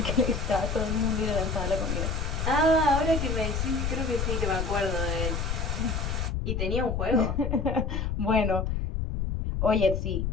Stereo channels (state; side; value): noise; left; rumble, 1 dB below the sound